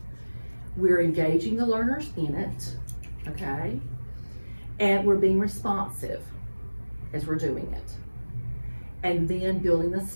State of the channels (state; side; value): inverted; both; correlation -1.00